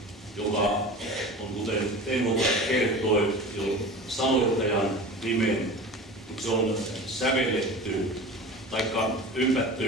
joka on, kuten Teemu kertoi, jo sanoittajan nimen, mutta se on sävelletty taikka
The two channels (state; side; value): normal; both; correlation 0.35